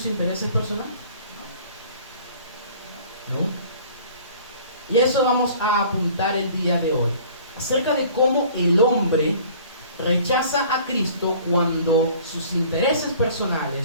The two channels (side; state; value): both; inverted; correlation -0.50